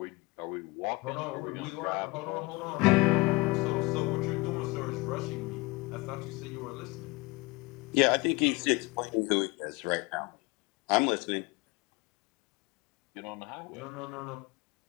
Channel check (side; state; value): right; quieter; 23.5 dB